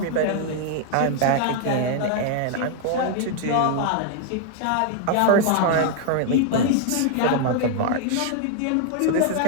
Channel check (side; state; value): both; different; correlation 0.00